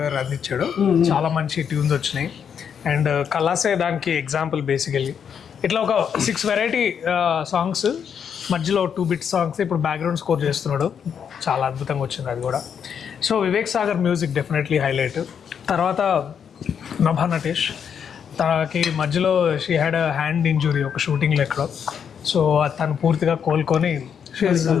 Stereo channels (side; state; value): right; quieter; 7.6 dB